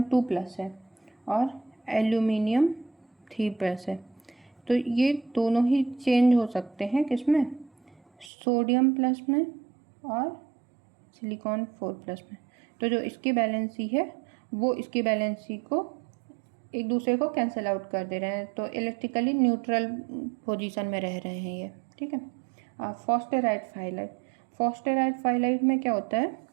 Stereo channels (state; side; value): drops out; left; at 8.3 s